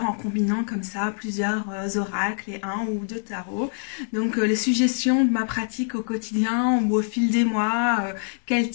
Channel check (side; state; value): right; silent; 61 dB below the other